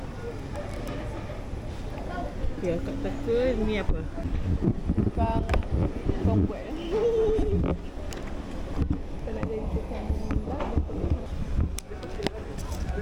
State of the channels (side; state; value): both; identical; correlation 1.00